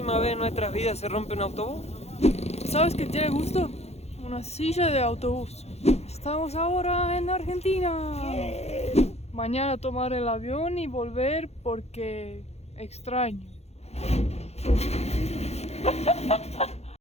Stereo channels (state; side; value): late; right; 0.31 ms